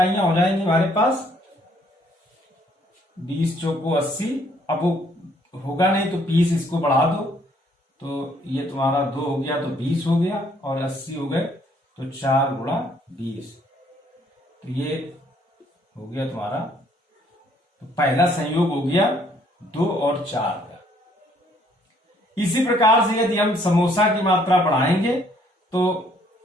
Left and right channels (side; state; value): both; normal; correlation 0.65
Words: हो जाएंगी हमारे पास, 20 चौको 80। अब वो होगा नहीं तो 20 इसको बढ़ा दो तो ये तुम्हारा 2 हो गया तो 20 हो गया और 80 हो गए तो 4 गुणा 20, तो ये हो गया तुम्हारा। तो पहला संयोग हो गया 2 और 4 का। इसी प्रकार से यदि हम समोसा की मात्रा बढ़ाएंगे तो